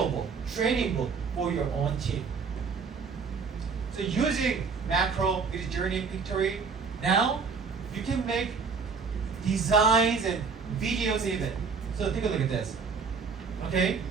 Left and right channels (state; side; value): quieter; left; 5.3 dB